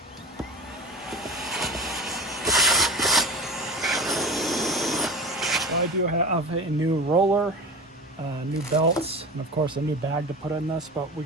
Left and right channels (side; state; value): both; normal; correlation 0.32